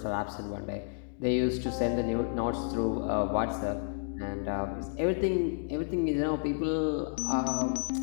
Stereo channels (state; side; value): silent; right; digital silence